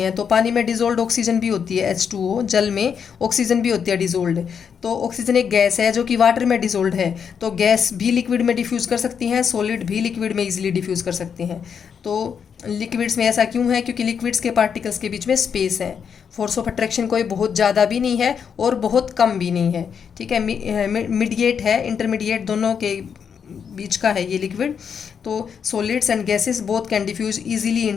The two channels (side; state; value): right; quieter; 7.1 dB